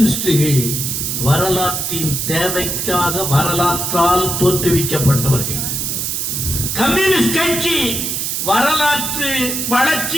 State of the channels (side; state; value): right; noise; hiss, 2 dB below the sound